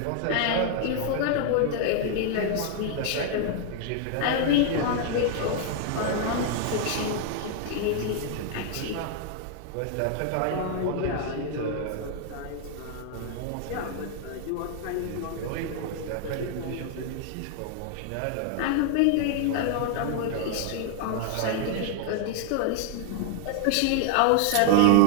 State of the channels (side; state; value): both; different; correlation 0.00